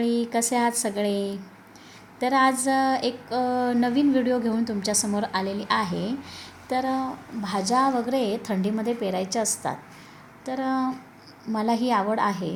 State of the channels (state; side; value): identical; both; correlation 1.00